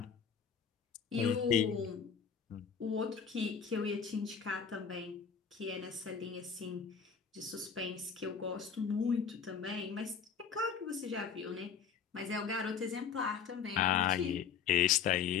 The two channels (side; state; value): right; quieter; 6.8 dB